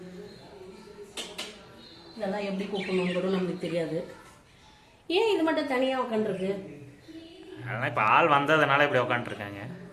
இதெல்லாம் எப்படி கூப்பிடணும் கூட நமக்கு தெரியாது. ஏன் இது மட்டும் தனியா உட்காந்துருக்கு? அதனால இப்ப ஆள் வந்ததுனால இப்படி உட்காந்துருக்காங்க.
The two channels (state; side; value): identical; both; correlation 1.00